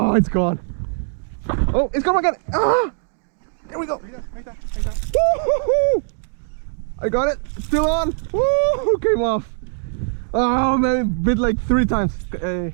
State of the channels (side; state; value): left; silent; digital silence